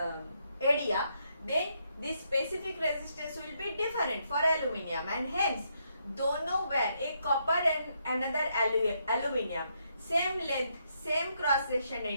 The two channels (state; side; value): inverted; both; correlation -0.77